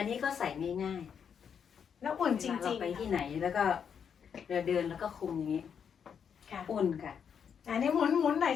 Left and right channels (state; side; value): quieter; right; 7.4 dB